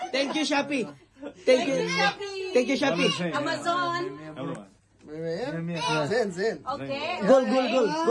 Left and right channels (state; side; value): identical; both; correlation 1.00